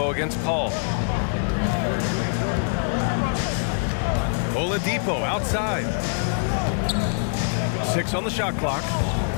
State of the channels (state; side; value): silent; right; digital silence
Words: against Paul. Oladipo outside. 6 on the shot clock.